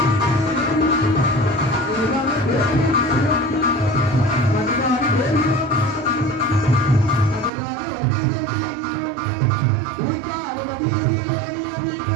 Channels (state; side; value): drops out; left; at 7.5 s